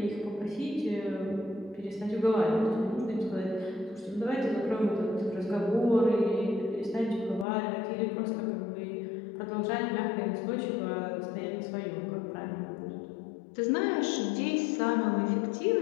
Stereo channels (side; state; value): right; drops out; at 7.5 s